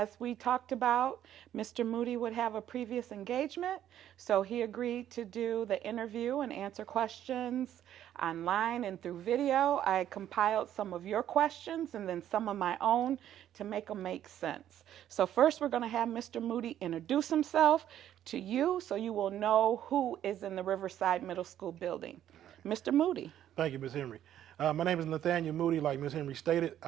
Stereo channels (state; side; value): quieter; left; 11.2 dB